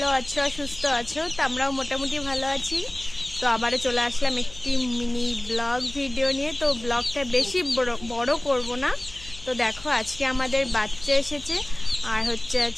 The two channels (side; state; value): left; noise; hum, 18 dB below the sound